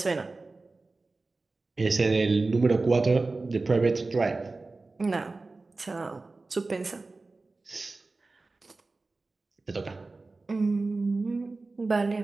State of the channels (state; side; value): quieter; left; 3.5 dB